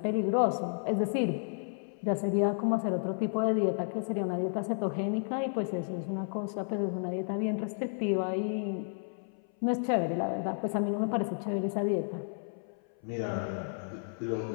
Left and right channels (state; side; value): silent; right; 56 dB below the other